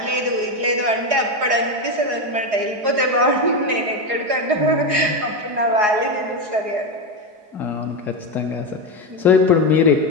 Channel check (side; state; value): left; late; 4.8 ms